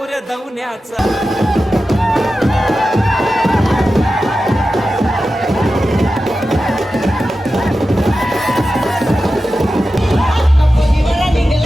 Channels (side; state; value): both; normal; correlation 0.92